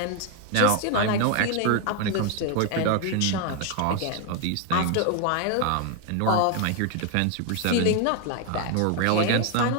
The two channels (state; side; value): different; both; correlation 0.01